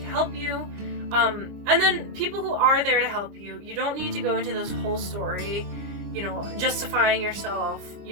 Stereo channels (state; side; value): late; left; 25 ms